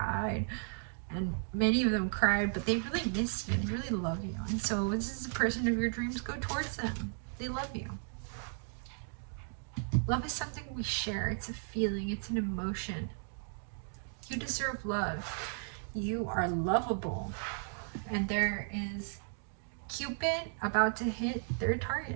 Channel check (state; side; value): silent; left; 54 dB below the other